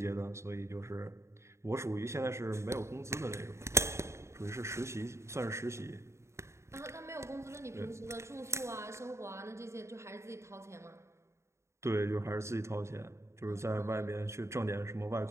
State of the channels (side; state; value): left; late; 0.14 ms